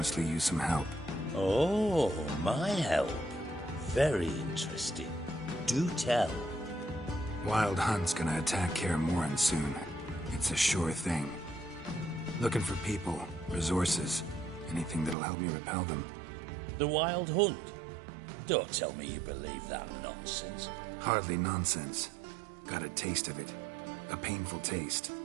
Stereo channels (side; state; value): left; drops out; at 15.2 s